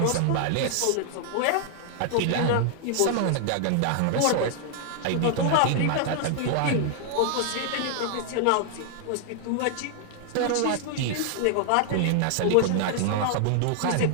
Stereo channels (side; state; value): both; different; correlation 0.00